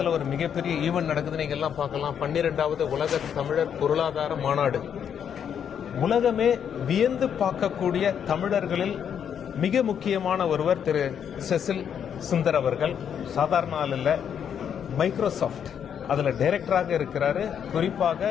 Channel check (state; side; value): quieter; right; 8.3 dB